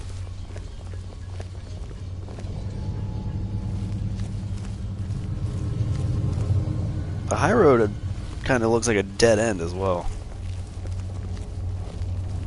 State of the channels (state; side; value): identical; both; correlation 1.00